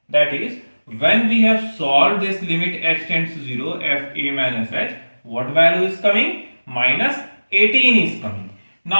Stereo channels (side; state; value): both; inverted; correlation -1.00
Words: That is, when we have solved this limit h tends to 0, f a minus h, what value is coming? Minus 18 is coming.